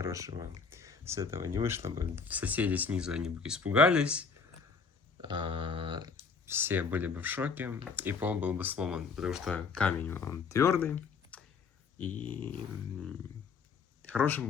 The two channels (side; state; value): right; quieter; 5.3 dB